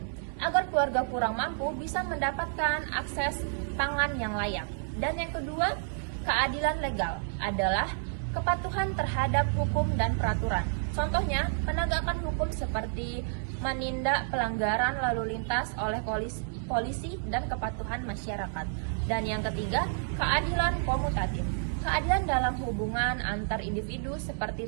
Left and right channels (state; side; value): silent; left; digital silence